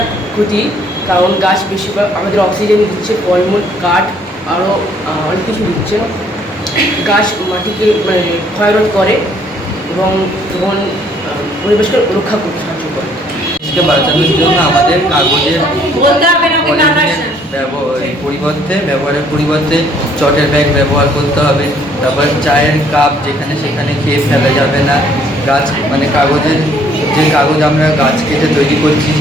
ক্ষতি, কারণ গাছ বেশিরভাগ আমাদের অক্সিজেন দিচ্ছে, ফলমূল, কাঠ, আরও অনেক কিছু দিচ্ছে। গাছ মাটিকে মানে ক্ষয়রোধ করে এবং পরিবেশকে রক্ষা করতে সাহায্য করে। দেশকে বাঁচানোর জন্য আমাদের কাগজের বলতে হবে না ওকে কাটার ব্যবহারের পরিবর্তে চটের ব্যাগ ব্যবহার করতে হবে। তারপর চায়ের কাপ যেখানে সেখানে খেয়ে ফেলা যাবে না। গাছ মানে কাগজের যে কাগজ আমরা গাছ কেটে তৈরি করছি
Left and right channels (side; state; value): both; normal; correlation 0.63